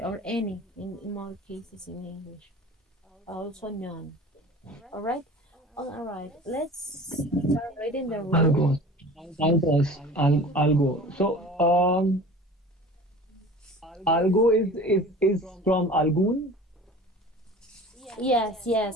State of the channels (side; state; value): both; normal; correlation 0.41